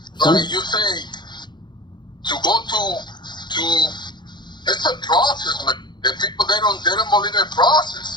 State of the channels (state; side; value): late; right; 0.21 ms